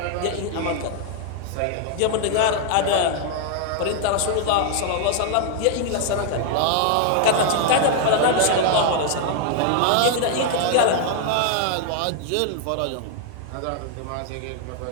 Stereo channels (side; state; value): both; different; correlation -0.01